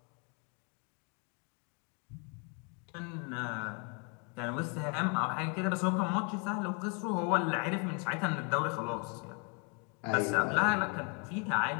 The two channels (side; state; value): right; quieter; 35.6 dB